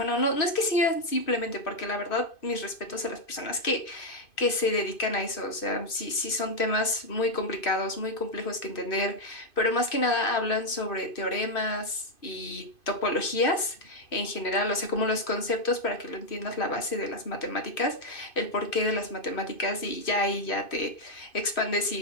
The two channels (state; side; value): late; right; 2.5 ms